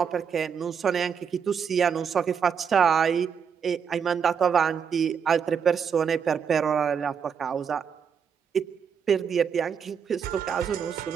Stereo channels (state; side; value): quieter; left; 7.0 dB